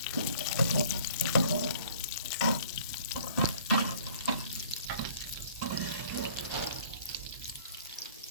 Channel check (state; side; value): inverted; both; correlation -0.54